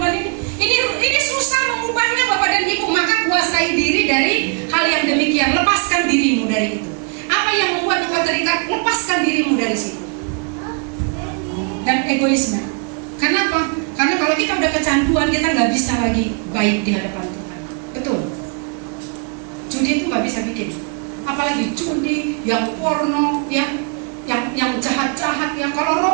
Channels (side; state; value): left; quieter; 38.8 dB